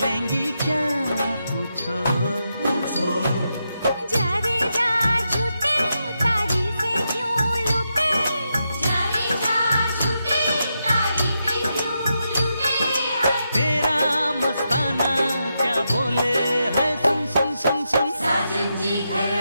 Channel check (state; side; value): inverted; both; correlation -0.85